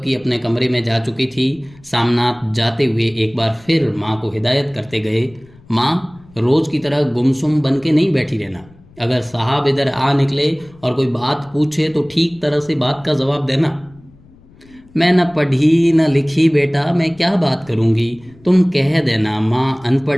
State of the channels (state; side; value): noise; left; rumble, 26 dB below the sound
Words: की अपने कमरे में जा चुकी थी। सामनाथ जाते हुए एक बार फिर माँ को हिदायत करते गए, माँ रोज की तरह गुमसुम बन के नहीं बैठी रहना। अगर साहब इधर आ निकले और कोई बात पूछे तो ठीक तरह से बात का जवाब देना। मैं न पढ़ी न लिखी बेटा, मैं क्या बात करूँगी, तुम कह देना माँ